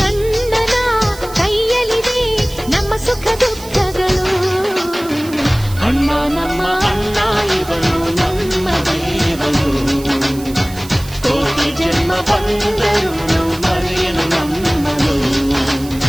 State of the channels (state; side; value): noise; right; hiss, 17 dB below the sound